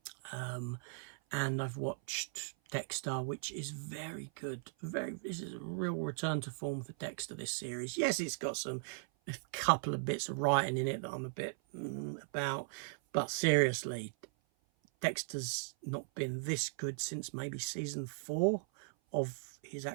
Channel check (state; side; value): silent; left; 52 dB below the other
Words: And I've watched Dexter, which is very good. This is a real return to form for Dexter, this series. Yes, it's got a couple of bits of writing in it that I'm a bit about. But seriously, Dexter's not been this good since maybe season 4 of his